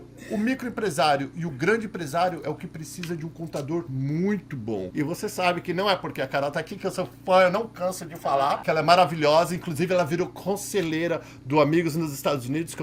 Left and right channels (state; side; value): identical; both; correlation 1.00